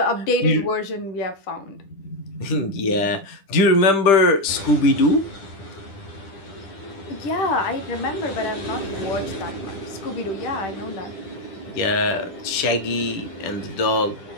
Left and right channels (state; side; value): late; right; 10 ms